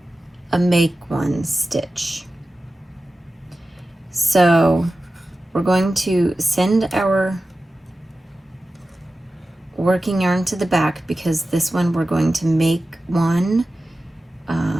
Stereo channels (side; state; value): both; normal; correlation 0.94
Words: a make one stitch. So we're going to send our working yarn to the back because this one we're going to make one